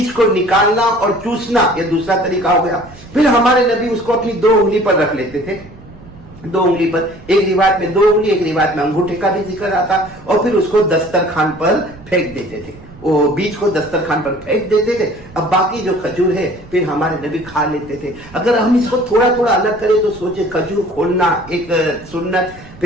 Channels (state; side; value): noise; right; rumble, 20 dB below the sound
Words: کو نکالنا اور چوسنا یہ دوسرا طریقہ ہو گیا. پھر ہمارے نبی اس کو اپنی 2 انگلی پر رکھ لیتے تھے، 2 انگلی پر، ایک روایت میں 2 انگلی، ایک روایت میں انگوٹھے کا بھی ذکر آتا، اور پھر اس کو دسترخوان پر پھینک دیتے تھے. وہ بیج کو دسترخوان پر پھینک دیتے تھے. اب باقی جو کھجور ہے پھر ہمارے نبی کھا لیتے تھے. اگر ہم اس کو تھوڑا تھوڑا الگ کریں تو سوچے کھجور کھولنا ایک سنت،